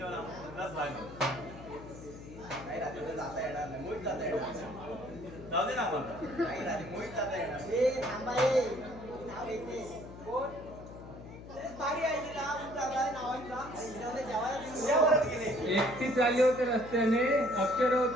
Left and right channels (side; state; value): left; noise; hum, 15 dB below the sound